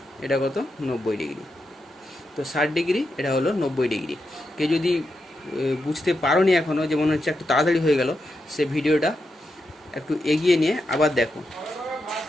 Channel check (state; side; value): normal; both; correlation 0.86